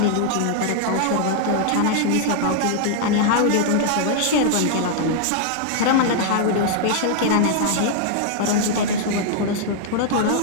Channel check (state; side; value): different; both; correlation 0.00